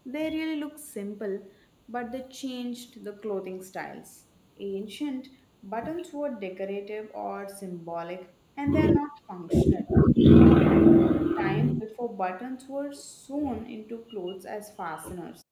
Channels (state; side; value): identical; both; correlation 1.00